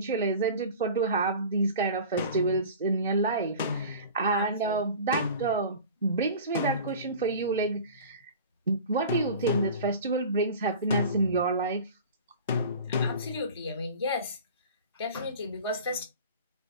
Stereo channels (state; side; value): inverted; both; correlation -0.38